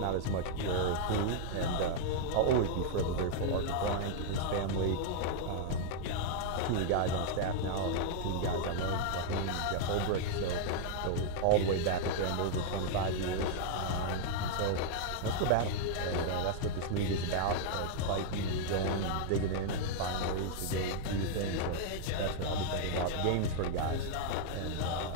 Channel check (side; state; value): both; different; correlation -0.01